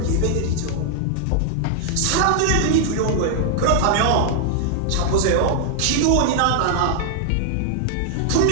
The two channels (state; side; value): different; both; correlation 0.00